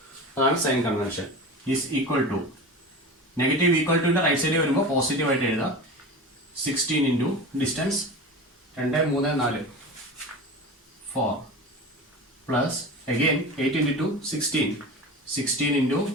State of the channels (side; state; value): both; normal; correlation 0.31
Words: അതാണ് sign convention. Is equal to, negative equal ടുവിന്റെ റൈറ്റ് സൈഡിൽ വരുമ്പോൾ പോസിറ്റീവ് ആയിട്ട് എഴുതാം. 16 into distance 2 3 4 4 plus again 8 into 2 16, 16 into